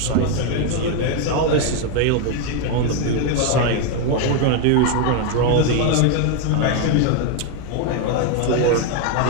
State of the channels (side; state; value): both; different; correlation 0.01